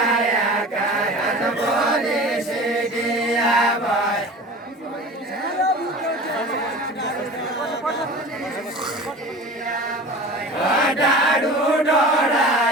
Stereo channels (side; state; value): both; normal; correlation 0.38